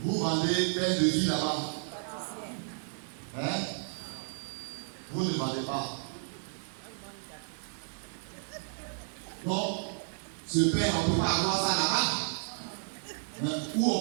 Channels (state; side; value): silent; left; 56 dB below the other